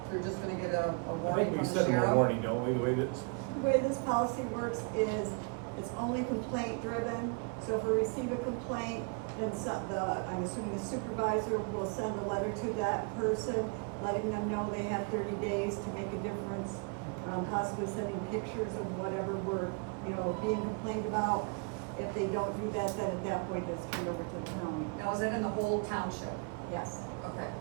they're just gonna get a I warning think we from the sent them a sheriff? warning, don't we, the way this? The way this policy works is it's only complaint driven. So if we receive a complaint, then I'm assuming the supervisor will send a letter to that person, letting them know they have 30 days to make a difference, possibly sending pictures of whatever we're, being complained about. If they don't do that, then at that point it's turned over to the county. Now, is that in the whole township? Yes. Okay.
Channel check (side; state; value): left; quieter; 35.6 dB